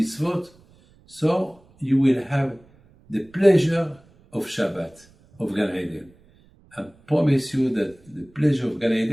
so you will have the pleasure of Shabbat, of Gan Eden. I promise you that the pleasure of Gan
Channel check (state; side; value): noise; right; rumble, 29 dB below the sound